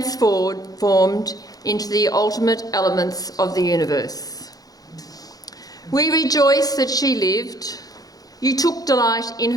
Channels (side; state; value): right; late; 0.18 ms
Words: into the ultimate elements of the universe. We rejoice that she lived. You took delight in